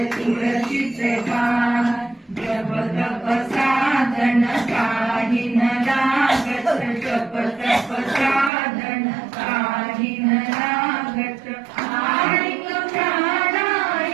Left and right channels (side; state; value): left; drops out; at 8.5 s